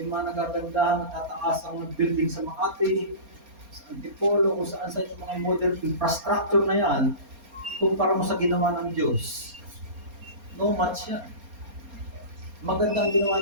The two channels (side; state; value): left; late; 4.3 ms